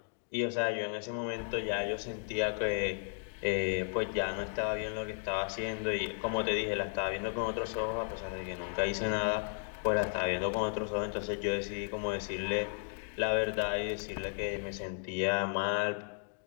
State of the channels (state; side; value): silent; right; 55 dB below the other